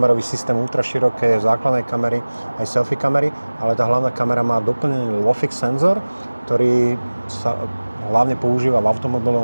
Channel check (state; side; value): inverted; both; correlation -1.00